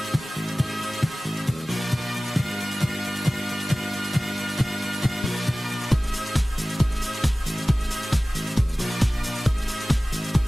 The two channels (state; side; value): normal; both; correlation 0.97